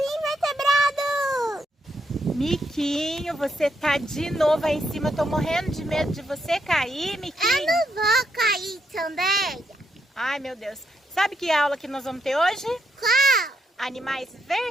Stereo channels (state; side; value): normal; both; correlation 0.78